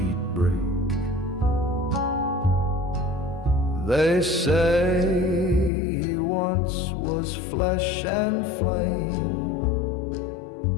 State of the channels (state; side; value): drops out; right; at 5.7 s